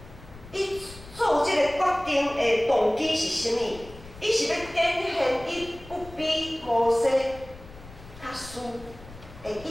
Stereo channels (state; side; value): noise; left; rumble, 18 dB below the sound